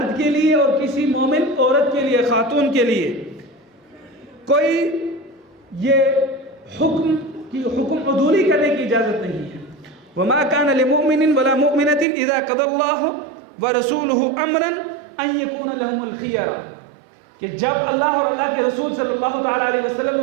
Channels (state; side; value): drops out; left; at 12.1 s